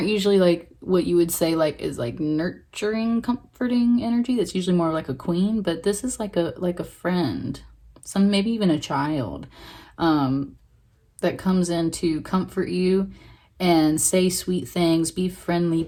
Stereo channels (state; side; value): identical; both; correlation 1.00